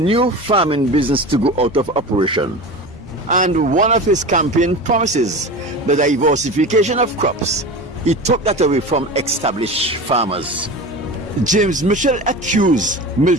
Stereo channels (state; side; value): normal; both; correlation 0.31